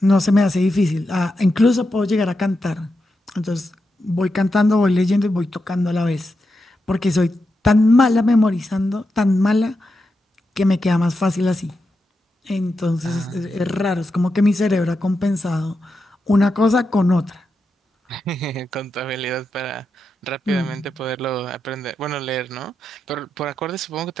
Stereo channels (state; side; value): normal; both; correlation 0.87